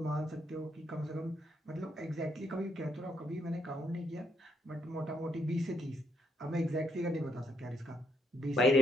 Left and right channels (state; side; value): normal; both; correlation 0.74